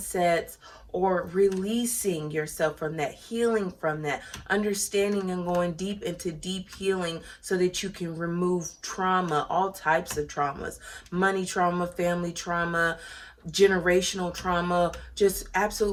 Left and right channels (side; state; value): both; identical; correlation 1.00